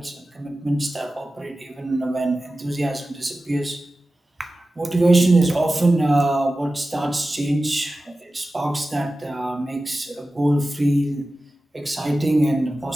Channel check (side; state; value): both; normal; correlation 0.95